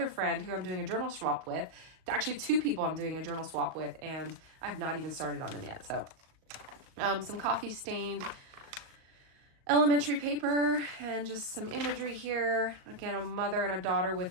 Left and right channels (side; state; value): left; late; 38 ms